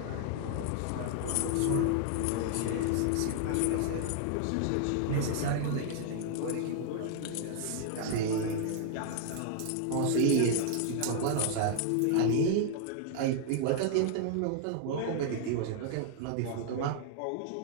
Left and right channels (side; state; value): both; different; correlation -0.01